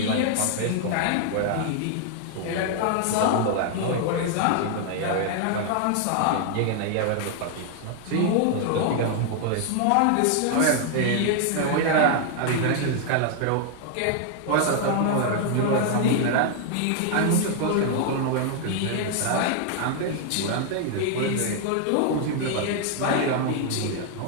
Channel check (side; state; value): both; different; correlation 0.00